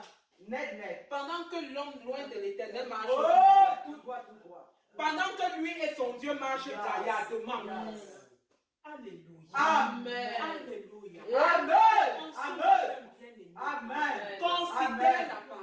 Net. Pendant que l'homme loin de l'Éternel marche, tout droit. pendant que lui et son Dieu marchent gaillardement. Alléluia. Amen. Alléluia. Amen.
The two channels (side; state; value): both; identical; correlation 1.00